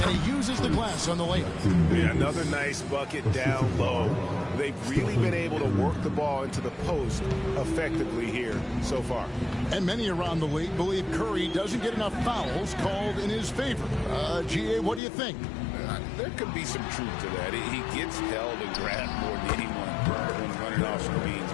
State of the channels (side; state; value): right; drops out; at 15.0 s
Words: And he uses the glass on the layup. Yeah, another nice bucket down low. They've really been able to work the ball into the post effectively here so far. And many around the league believe Curry doesn't get enough fouls called in his favor. GA, what do you think? There could be some truth to that. He gets held and grabbed more than anyone when running off screens,